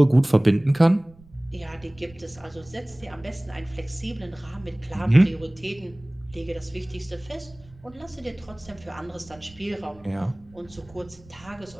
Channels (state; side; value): noise; right; rumble, 24 dB below the sound